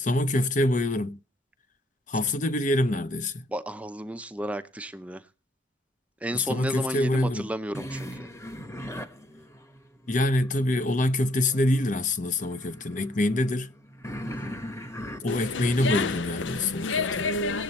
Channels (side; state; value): both; normal; correlation 0.65